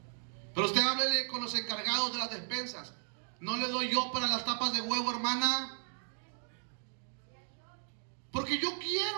Pero usted háblele con los encargados de las despensas. No le doy yo para las tapas de huevo, hermana, porque yo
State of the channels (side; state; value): left; silent; digital silence